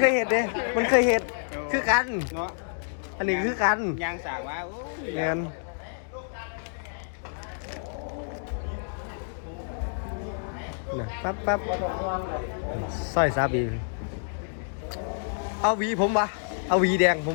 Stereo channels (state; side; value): silent; right; digital silence